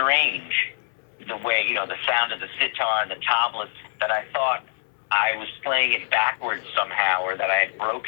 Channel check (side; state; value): right; silent; 62 dB below the other